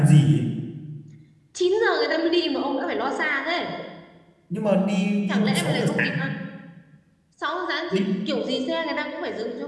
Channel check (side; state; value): both; identical; correlation 1.00